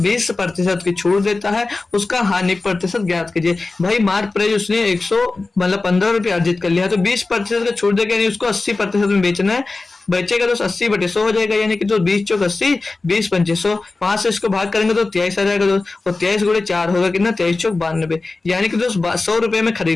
20% की छूट देता है, उसका हानि प्रतिशत ज्ञात कीजिए। भाई मार्क प्राइस उसने 100 मतलब 15 रुपये अर्जित कर लिया, तो 20% का छूट देगा, यानी उसको 80% में बेचना है। बचेगा तो 80/100 हो जाएगा, यानी कि तो 20 चौक 80, 20 पंचे 100, 5 से इसको भाग करेंगे तो 23 आ जाएगा दोस्त, और 23 गुणे 4 होगा कितना 23 चौक 92, यानी कि दोस्त 100 रुपए में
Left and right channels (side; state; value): right; quieter; 3.5 dB